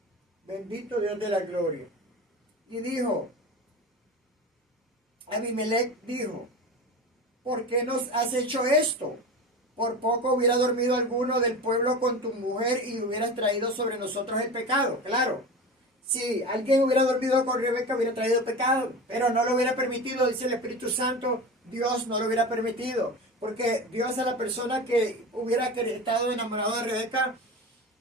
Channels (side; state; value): both; normal; correlation 0.29